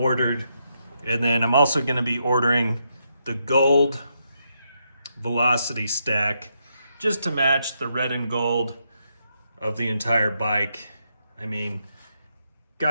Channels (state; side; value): inverted; both; correlation -0.80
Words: And then I'm also going to be ordering the gold velocity stack just to match the red and gold of the entire bike. I mean,